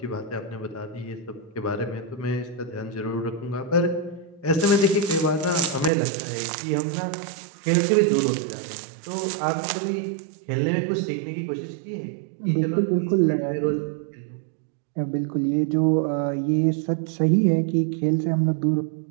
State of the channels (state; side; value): drops out; left; at 5.9 s